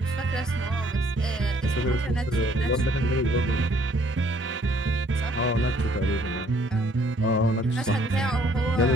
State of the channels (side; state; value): both; normal; correlation 0.62